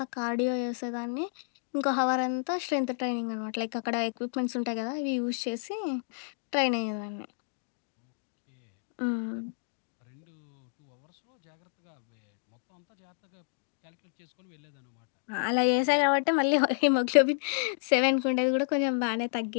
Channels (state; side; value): silent; right; digital silence